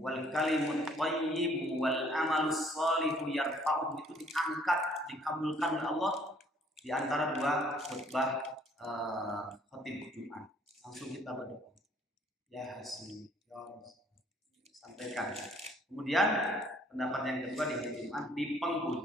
kalimut thayyib wal amalus shalihu yarfa'u, itu diangkat, dikabulkan oleh Allah di antara dua khutbah khatib Jumat. Langsung kita berdoa. Ya Hasan, ya sampaikan. Kemudian pendapat yang kedua di hari Jumat, di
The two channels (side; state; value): both; normal; correlation 0.61